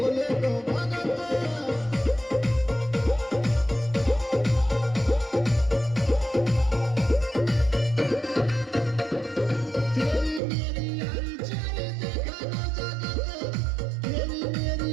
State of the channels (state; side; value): drops out; left; at 10.4 s